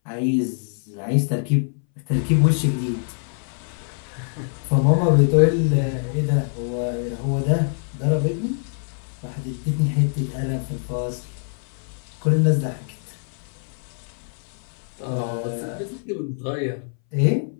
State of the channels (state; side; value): silent; right; 61 dB below the other